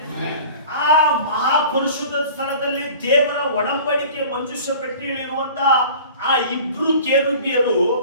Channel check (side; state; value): both; inverted; correlation -0.43